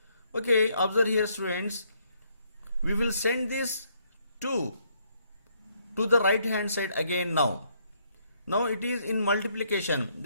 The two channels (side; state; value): both; inverted; correlation -0.71